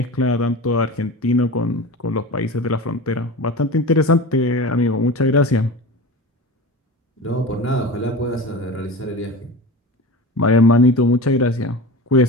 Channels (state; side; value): normal; both; correlation 0.31